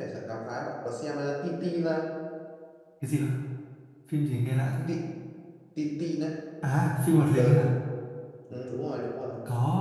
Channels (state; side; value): identical; both; correlation 1.00